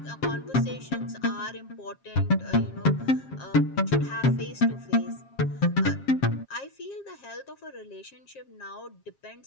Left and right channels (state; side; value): late; right; 7.4 ms